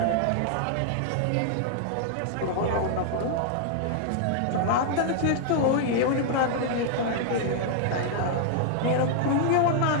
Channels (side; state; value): both; different; correlation -0.01